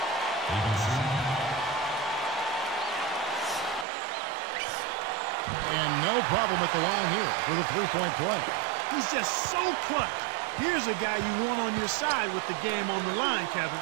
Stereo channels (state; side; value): drops out; left; at 3.9 s